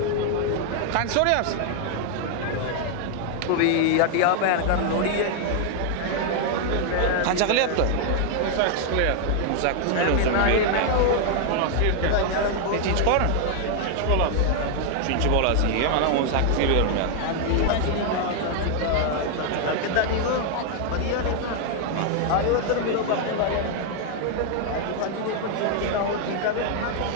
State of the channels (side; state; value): both; different; correlation 0.00